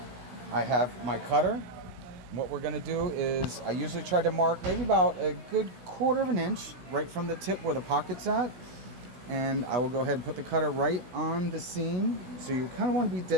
I have my cutter. What we're gonna do is I usually try to mark maybe about a good quarter of an inch right from the tip where the pocket's at. And I will go ahead and put the cutter right on the seam. So you kind of want to be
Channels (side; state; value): left; late; 16 ms